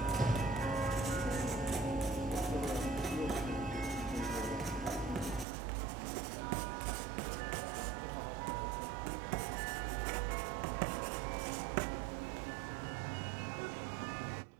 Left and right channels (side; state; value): left; drops out; at 5.5 s